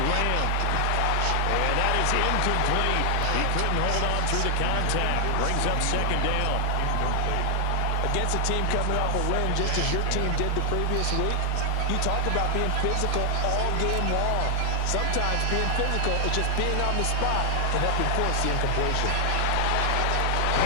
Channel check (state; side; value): different; both; correlation 0.00